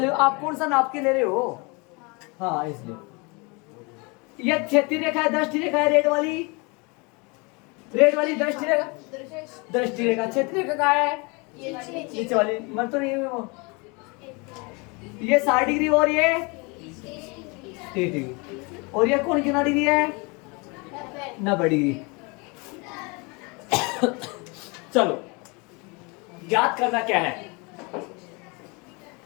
लो, आप कौन सा नाप के ले रहे हो। हाँ इसलिए ये क्षैतिज रेखा है, दृष्टि रेखा है, रेड वाली दृष्टि रेखा, दृष्टि रेखा। क्षैतिज रेखा कहाँ है, नीचे वाली, मन तो नहीं है वो। ये 60 डिग्री और ये 30 डिग्री, और ये कौन कितना डिग्री है, 90 डिग्री। चलो याद करना क्या है,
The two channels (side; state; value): right; quieter; 29.1 dB